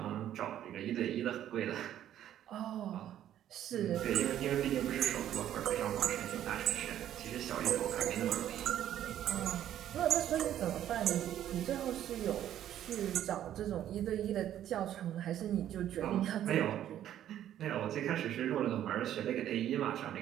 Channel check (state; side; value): quieter; left; 11.4 dB